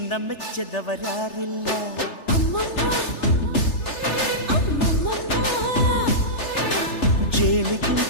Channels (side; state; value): right; late; 3.4 ms